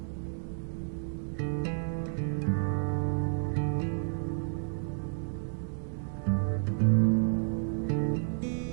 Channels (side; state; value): left; silent; digital silence